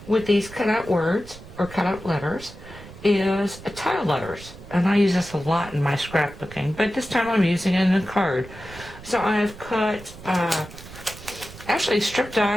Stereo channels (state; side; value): noise; right; rumble, 16 dB below the sound